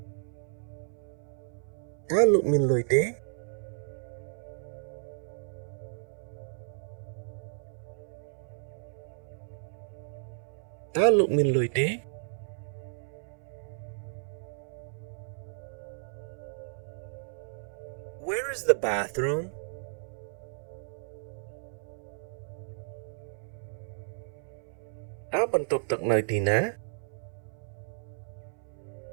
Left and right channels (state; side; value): silent; left; 56 dB below the other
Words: តើលោកមានលុយទេតើលោកមានលុយទេ Where is the bathroom? តើបន្ទប់ទឹកនៅទីណា